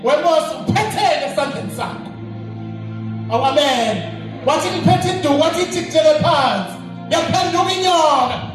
wemose uphethele esandleni sakho. Awu amen. Wathi ngiphethe induku wathi ithikele phansi. Yaphenduka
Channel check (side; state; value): both; identical; correlation 1.00